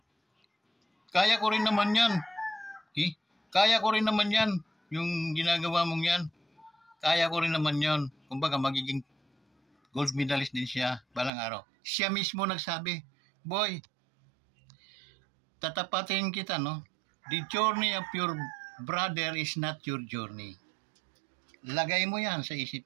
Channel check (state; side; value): drops out; left; at 11.3 s